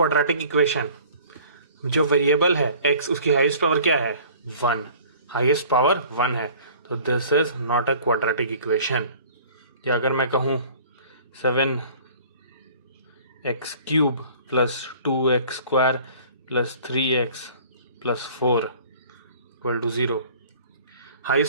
equation? जो वेरिएबल है x, उसकी हाईएस्ट पावर क्या है? 1. हाईएस्ट पावर 1 है, तो this is not a quadratic equation. या अगर मैं कहूँ 7x cube plus 2x square plus 3x plus 4 equal to 0,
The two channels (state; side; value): inverted; both; correlation -0.49